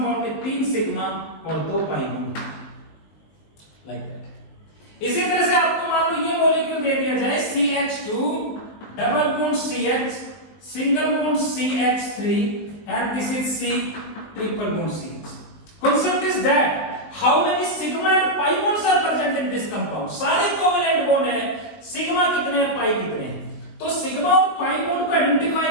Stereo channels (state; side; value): late; right; 19 ms